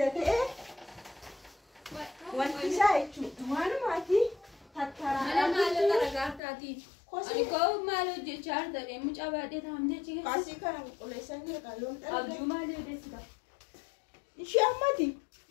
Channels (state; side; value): drops out; right; at 6.4 s